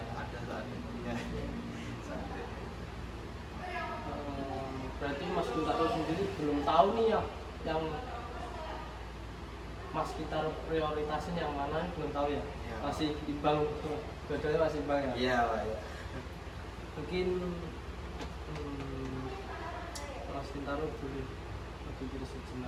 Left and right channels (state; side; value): identical; both; correlation 1.00